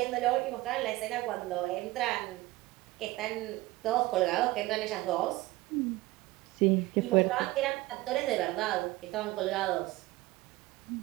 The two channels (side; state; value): left; quieter; 19.1 dB